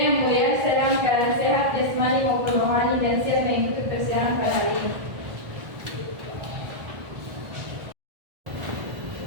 mulia, saya dalam keadaan sehat jasmani maupun rohani dan siap mengikuti persidangan pada hari ini.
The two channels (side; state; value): left; late; 1.5 ms